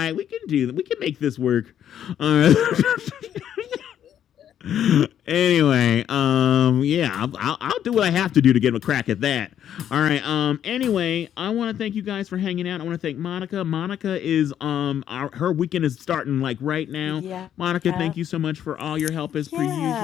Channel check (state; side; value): quieter; right; 10.0 dB